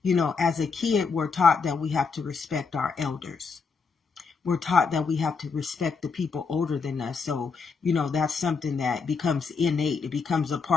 you know, as a kid, we're taught that we have to respect our elders. We're taught that we have to respect the people older than us. So, you know, that's something that becomes innate. It becomes a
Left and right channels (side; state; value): right; quieter; 5.0 dB